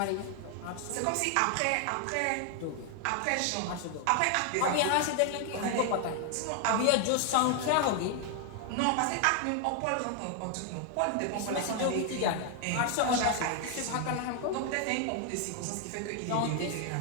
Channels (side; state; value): both; different; correlation 0.00